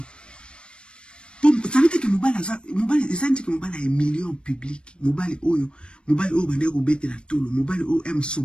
ça veut dire que mobali eza nti ke mobali humilié en public mobali oyo bande kobetela tolo mobali oyo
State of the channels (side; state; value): right; late; 0.056 ms